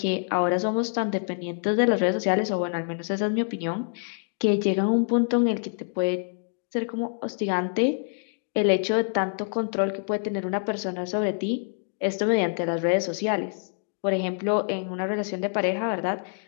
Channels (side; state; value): right; silent; 61 dB below the other